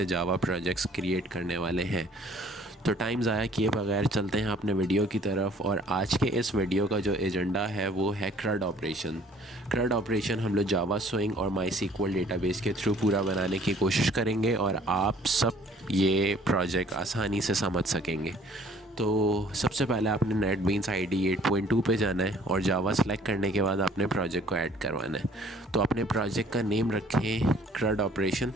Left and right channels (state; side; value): normal; both; correlation 0.56